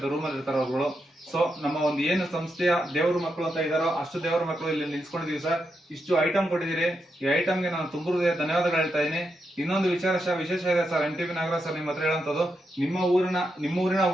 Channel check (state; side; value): normal; both; correlation 0.84